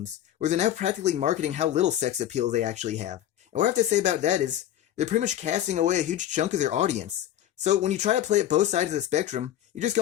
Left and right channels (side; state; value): right; quieter; 11.8 dB